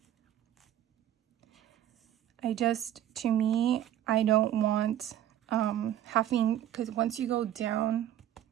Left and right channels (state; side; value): quieter; left; 11.6 dB